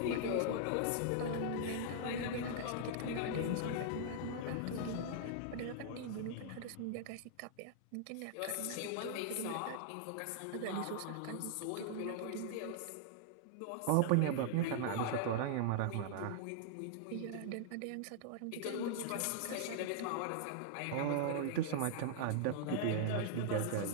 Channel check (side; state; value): both; different; correlation -0.01